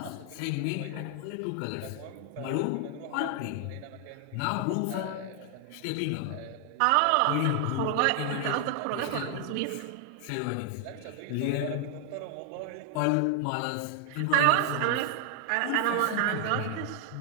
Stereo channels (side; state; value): both; different; correlation 0.00